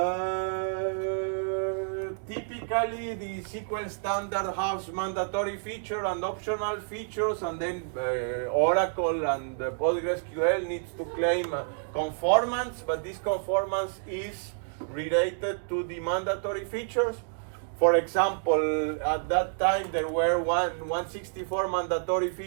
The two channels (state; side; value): silent; left; digital silence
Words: Typically, the SQL standard has mandatory features and optional features, and then Oracle and PostgreSQL needs to claim conformance, but this conformance is related to the mandatory features. For example, at that time there were 164 mandatory